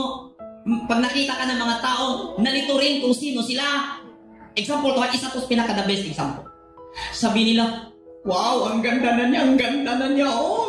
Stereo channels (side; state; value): both; identical; correlation 1.00